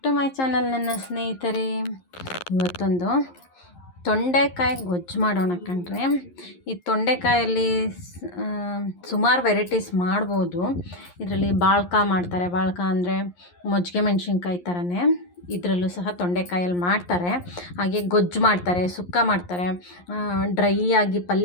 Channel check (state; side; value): late; right; 11 ms